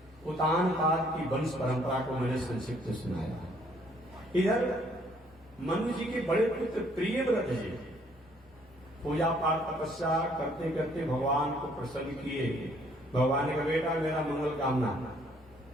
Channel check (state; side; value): normal; both; correlation 0.64